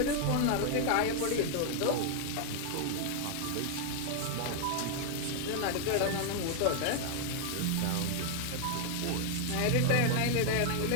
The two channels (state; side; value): different; both; correlation 0.00